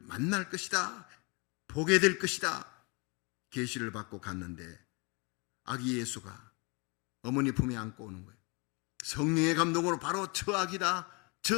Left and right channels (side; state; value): right; quieter; 30.3 dB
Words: 만날 것이다, 보게 될 것이다 계시를 받고 갔는데 아기 예수가 어머니 품에 안고 오는 거예요. 성령의 감동으로 바로 저 아기다,